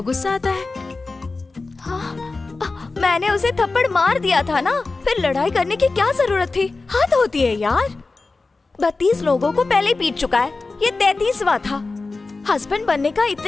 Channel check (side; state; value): right; quieter; 3.7 dB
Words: गुस्सा आता है। मैंने उसे थप्पड़ मार दिया था ना, फिर लड़ाई करने की क्या जरूरत थी? हद होती है यार। 32 लोगों को पहले पीट चुका है, ये 33वां था। हस्बैंड बनने का